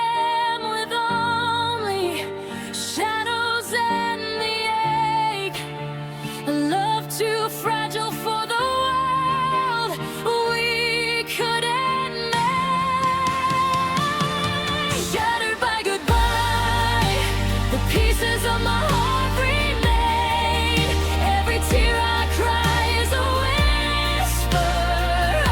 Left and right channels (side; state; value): both; identical; correlation 1.00